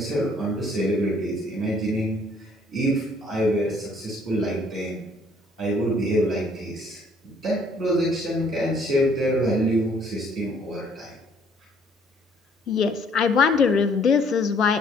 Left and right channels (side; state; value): both; normal; correlation 0.62